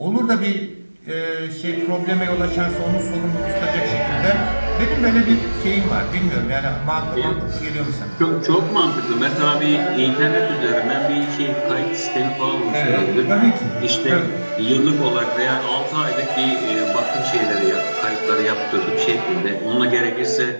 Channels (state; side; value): inverted; both; correlation -1.00